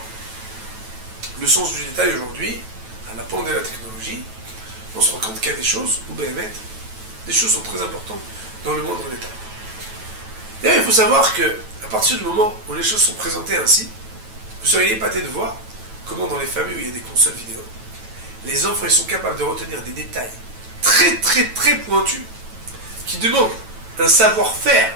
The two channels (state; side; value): late; left; 9.1 ms